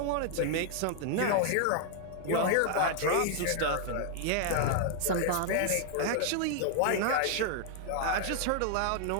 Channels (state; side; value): different; both; correlation 0.00